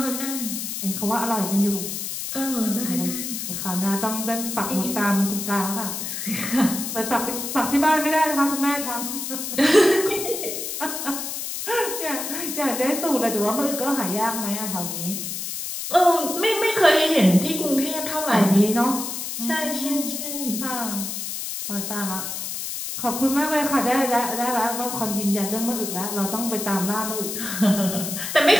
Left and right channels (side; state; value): left; noise; hiss, 5 dB below the sound